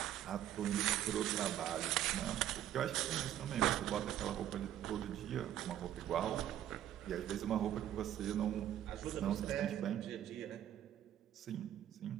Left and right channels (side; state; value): left; quieter; 11.5 dB